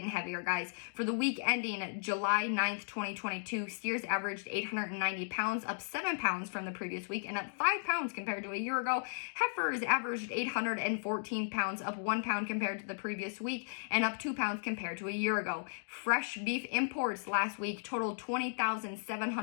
heavier, guys. For the week ending July 9th, 2022, steers averaged 890 pounds, up 7 pounds from the previous week, and up 5 pounds compared to a year ago. Heifers averaged 814 pounds, up 1 pound compared to the previous week, and up 2 pounds compared to a year ago. Fresh beef imports last week totaled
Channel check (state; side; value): silent; right; digital silence